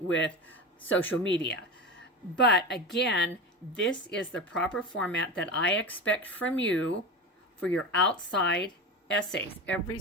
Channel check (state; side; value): normal; both; correlation 0.25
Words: with social media. But again, this is the proper format that I expect from you for your outside essays. Every